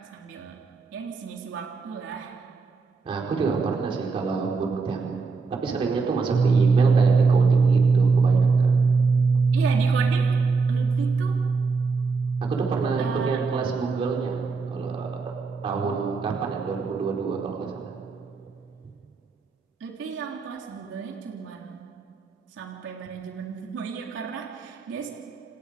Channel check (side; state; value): left; quieter; 4.5 dB